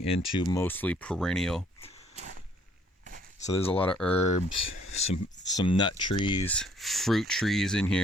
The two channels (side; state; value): both; normal; correlation 0.62